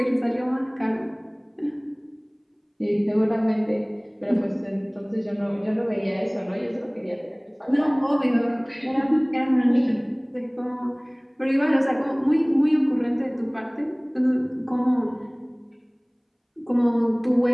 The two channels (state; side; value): identical; both; correlation 1.00